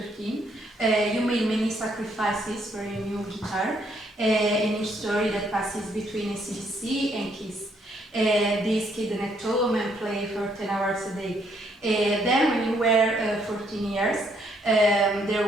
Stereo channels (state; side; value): normal; both; correlation 0.70